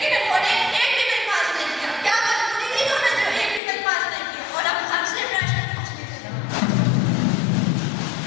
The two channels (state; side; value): drops out; right; at 3.6 s